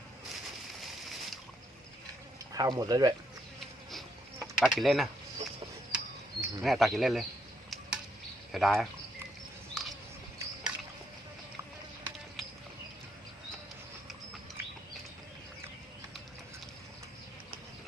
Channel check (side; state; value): both; normal; correlation 0.75